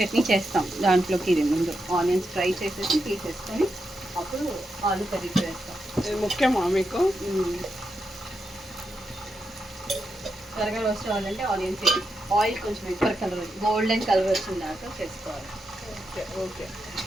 చేస్తాం. దాంట్లోకి ఇది ముందు ఆనియన్స్ ఫ్రై చేసేసి తీసేసుకొని అప్పుడు ఆలు కర్రీ చేస్తాం. ఇది ముఖ్యమా మీకు? త్వరగా రోస్ట్ అవ్వాలంటే ఆనియన్స్ ఆయిల్ కొంచెం ఎక్కువ కలర్ గోల్డెన్ కలర్ వచ్చిన దాకా చేసుకోవాలి. Okay okay.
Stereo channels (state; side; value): normal; both; correlation 0.86